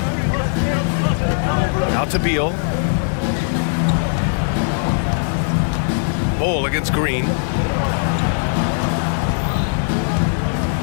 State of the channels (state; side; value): silent; right; digital silence